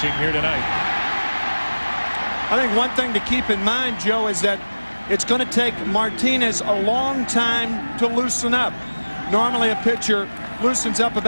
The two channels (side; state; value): both; inverted; correlation -1.00